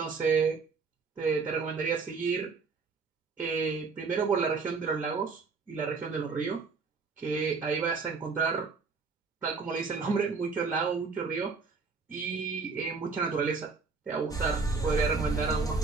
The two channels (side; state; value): left; quieter; 4.7 dB